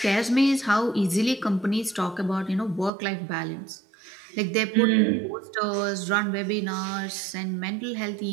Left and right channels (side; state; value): left; drops out; at 2.9 s